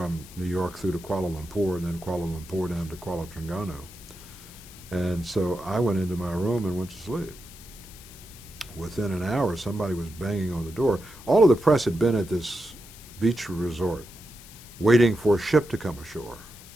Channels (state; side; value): noise; left; hiss, 19 dB below the sound